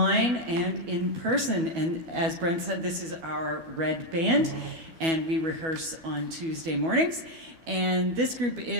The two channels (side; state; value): left; late; 12 ms